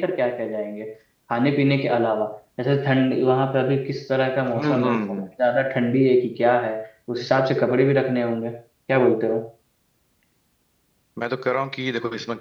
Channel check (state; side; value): identical; both; correlation 1.00